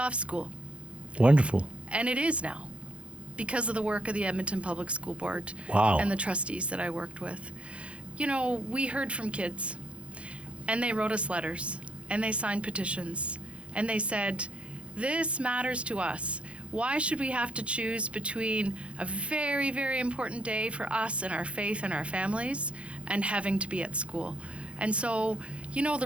school. Wonderful. And it is now, because of the work of the Edmonton Public School Board and the trustees that I worked with. You know, we heard from kids, and they wrote us letters, and they signed petitions, and they said, this matters to us. Why should we have to choose between a very, very important day for us and our faith and our families and having to be at school? And so, you know,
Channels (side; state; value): left; late; 0.061 ms